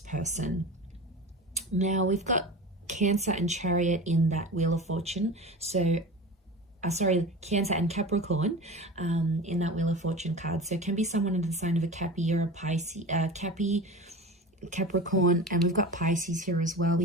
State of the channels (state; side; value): normal; both; correlation 0.32